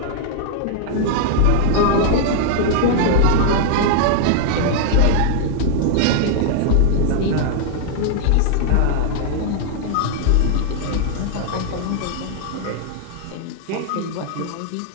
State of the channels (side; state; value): both; different; correlation 0.00